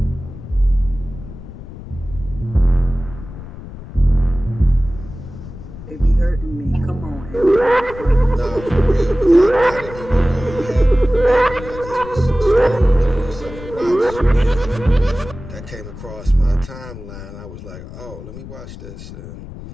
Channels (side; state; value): left; noise; rumble, 13 dB below the sound